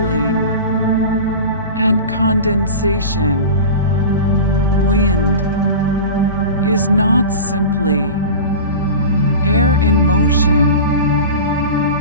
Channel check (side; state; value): both; inverted; correlation -0.32